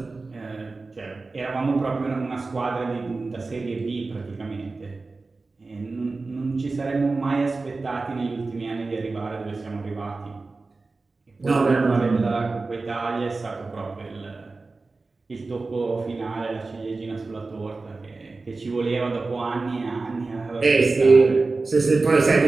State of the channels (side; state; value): left; quieter; 3.7 dB